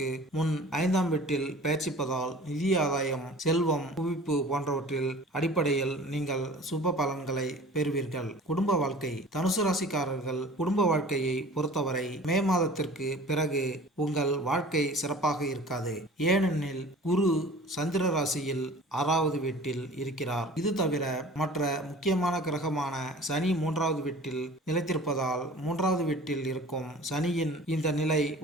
முன் 5ஆம் வீட்டில் பெயர்ச்சிப்பதால் நிதி ஆதாயம், செல்வம், குவிப்பு போன்றவற்றில் அடிப்படையில் நீங்கள் சுப பலன்களை பெறுவீர்கள். குடும்ப வாழ்க்கை தனுசு ராசிக்காரர்கள் குடும்ப வாழ்க்கையை பொறுத்தவரை மே மாதத்திற்கு பிறகு உங்கள் வாழ்க்கை சிறப்பாக இருக்காது. ஏனெனில் குரு சந்திர ராசியில் 6வது வீட்டில் இருக்கிறார். இது தவிர மற்ற முக்கியமான கிரகமான சனி 3வது வீட்டில் நிலைத்திருப்பதால் 3வது வீட்டில் இருக்கும் சனியின் இந்த நிலை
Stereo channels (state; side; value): normal; both; correlation 0.43